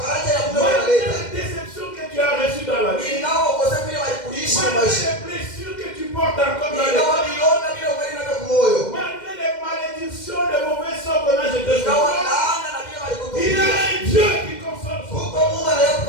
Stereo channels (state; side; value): late; right; 2.1 ms